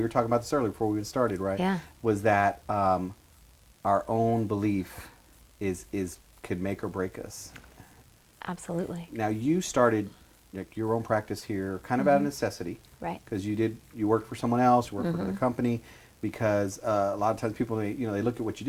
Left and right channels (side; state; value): both; identical; correlation 1.00